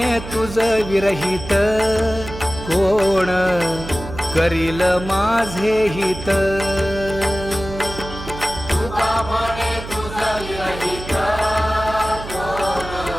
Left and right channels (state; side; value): noise; right; hum, 11 dB below the sound